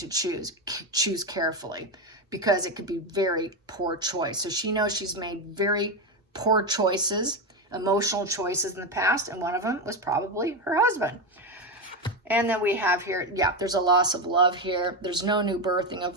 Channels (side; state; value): both; normal; correlation 0.12